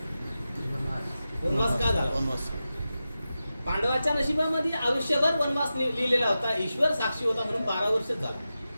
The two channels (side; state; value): both; inverted; correlation -0.92